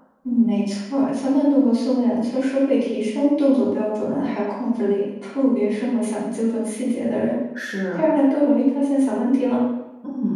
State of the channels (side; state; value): both; identical; correlation 1.00